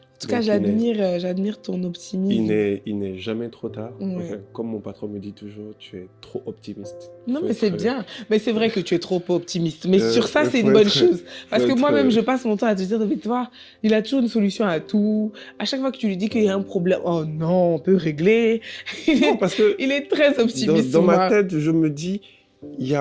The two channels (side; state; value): both; identical; correlation 1.00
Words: En tout cas, j'admire ton optimisme. Il n'est jamais trop tard. Enfin, comme mon patron me dit toujours, tu es trop optimiste. Non, mais c'est bien. Mais c'est vrai que tu es trop optimiste. Mais sur ça, c'est une bonne chose. Parce que moi-même, je passe mon temps à te dire, mais toi, il a toujours une solution à tout. À chaque fois que tu lui dis qu'il y a un problème, oh non, on peut régler. Non, parce que il est très optimiste. Dans ma tête, je me dis, il n'y